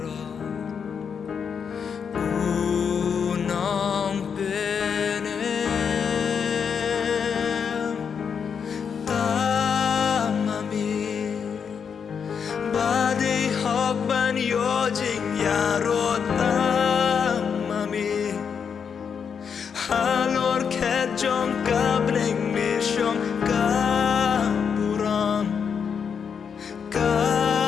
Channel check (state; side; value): quieter; right; 6.8 dB